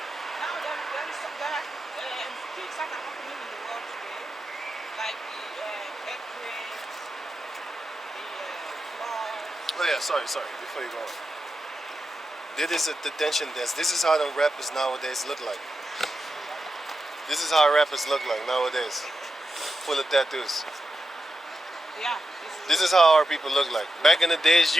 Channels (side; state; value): both; normal; correlation 0.89